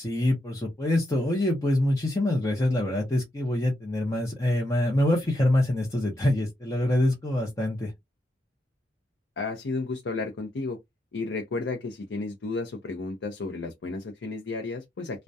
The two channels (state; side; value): normal; both; correlation 0.81